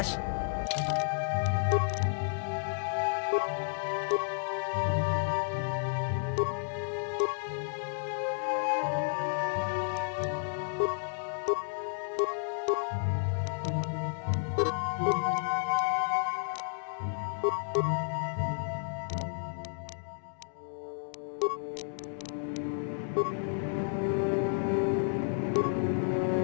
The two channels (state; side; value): silent; right; digital silence